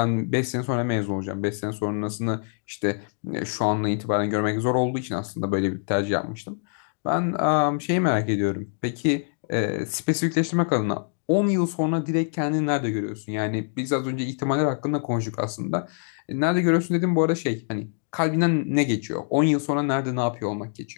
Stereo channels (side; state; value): right; silent; digital silence